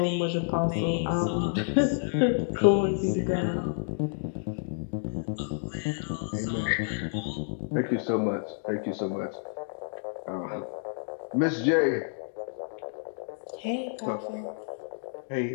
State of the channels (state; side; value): silent; right; digital silence